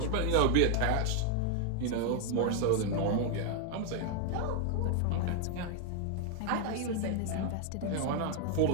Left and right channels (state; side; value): different; both; correlation 0.00